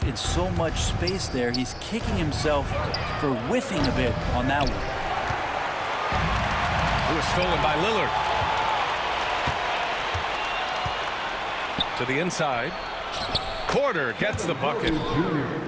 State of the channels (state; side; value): identical; both; correlation 1.00